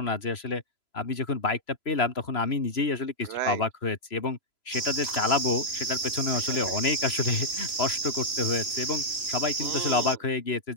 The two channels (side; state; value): right; late; 3.0 ms